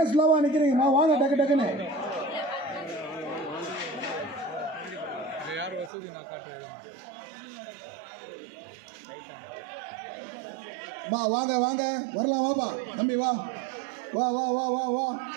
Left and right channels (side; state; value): left; drops out; at 5.9 s